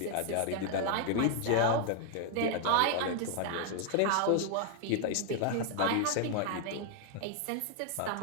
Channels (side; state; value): both; different; correlation 0.00